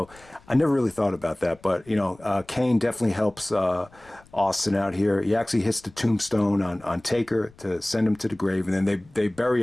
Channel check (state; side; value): noise; left; rumble, 27 dB below the sound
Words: I never really thought about that. But, Kane definitely helps Austin out here. He actually hits the tombstone on Taker to send him to the grave. And then they bury